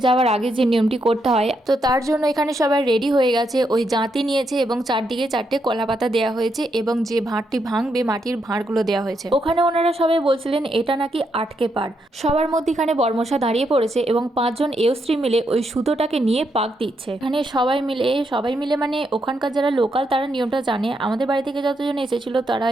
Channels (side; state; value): both; normal; correlation 0.80